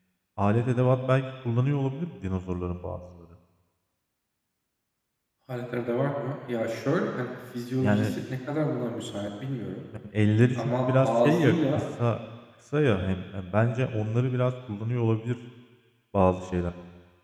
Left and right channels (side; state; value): both; identical; correlation 1.00